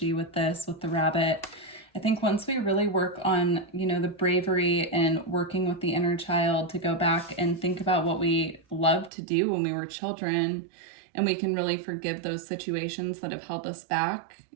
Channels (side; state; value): left; drops out; at 9.1 s